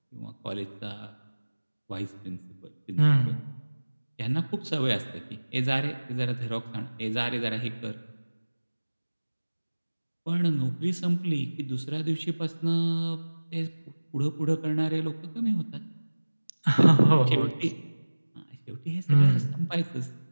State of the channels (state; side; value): inverted; both; correlation -1.00